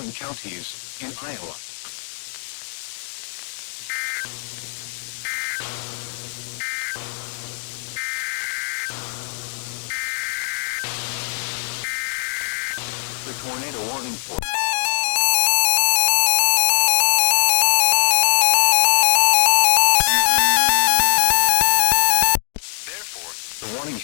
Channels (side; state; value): right; silent; digital silence